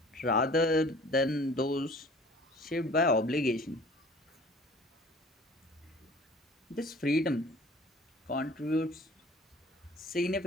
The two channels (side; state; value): both; normal; correlation 0.48